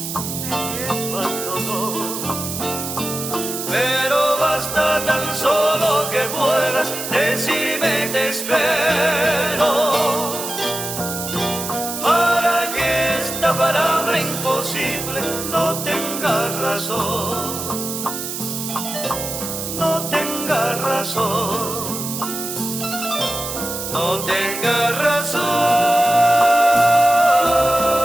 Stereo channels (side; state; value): right; noise; hiss, 6 dB below the sound